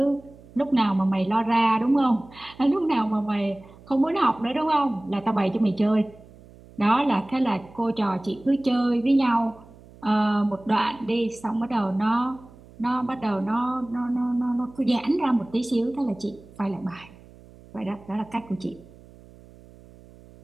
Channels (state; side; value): noise; right; hum, 23 dB below the sound